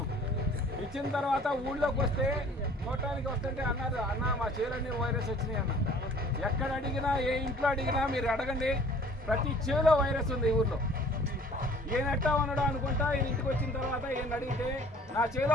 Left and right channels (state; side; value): normal; both; correlation 0.52